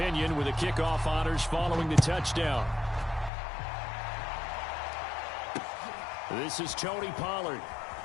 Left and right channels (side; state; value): right; drops out; at 3.3 s